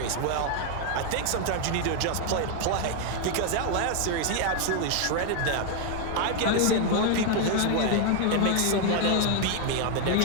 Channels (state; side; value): different; both; correlation 0.00